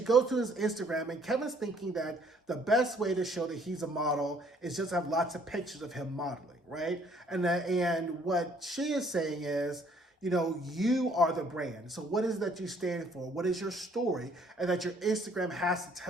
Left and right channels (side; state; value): both; normal; correlation 0.61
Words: to his Instagram, and Kevin's thinking that the best way to show that he's a model is just have lots of pictures of him modeling, right? And what she is saying is, you are the brand. So what is it that you stand for? What is your story? And that your Instagram has to